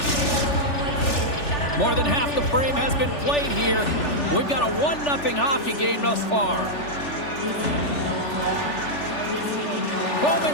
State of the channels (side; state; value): right; late; 3.4 ms